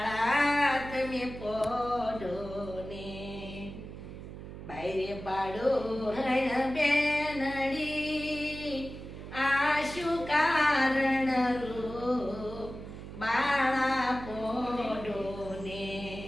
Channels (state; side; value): noise; right; hum, 11 dB below the sound